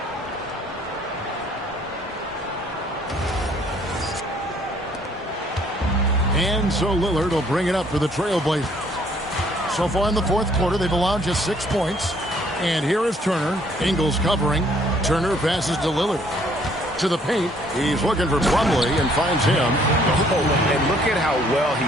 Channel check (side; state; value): both; normal; correlation 0.62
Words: And so Lillard will bring it up for the Trailblazers. So far in the fourth quarter, they've allowed just 6 points. And here is Turner. Ingles covering. Turner passes to Lillard. To the paint. He's looking for Plumlee and finds him. Oh, and look at how well he